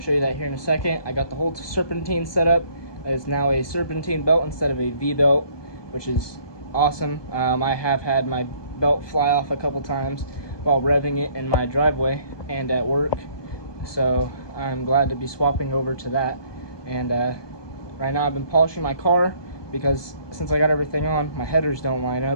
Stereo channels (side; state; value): right; late; 1.2 ms